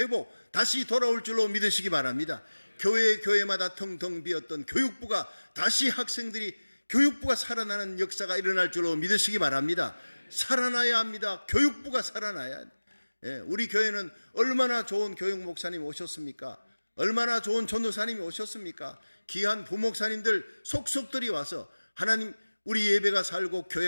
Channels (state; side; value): inverted; both; correlation -1.00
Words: 다시 돌아올 줄로 믿으시기 바랍니다. 교회마다 텅텅 비었던 교육부가 다시 학생들이, 교육부가 살아나는 역사가 일어날 줄로 믿으시기 바랍니다. 살아나야 합니다. 교육부가 살아나야 합니다. 우리 교회는 얼마나 좋은 교육 목사님이 오셨습니까? 얼마나 좋은 전도사님이 오셨습니까? 귀한 부목사님들 속속들이 와서 하나님, 우리 예배가 살고